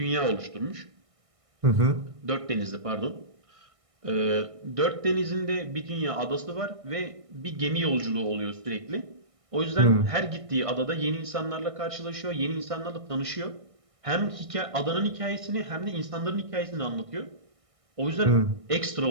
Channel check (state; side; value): late; left; 1.6 ms